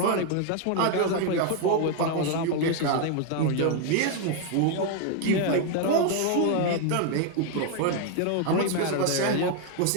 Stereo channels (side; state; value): both; different; correlation 0.01